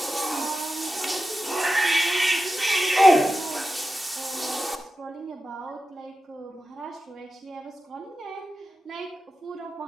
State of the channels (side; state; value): both; normal; correlation 0.92